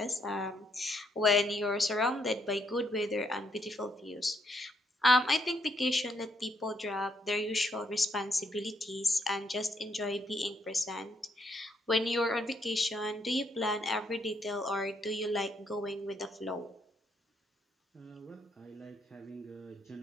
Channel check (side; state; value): both; normal; correlation 0.73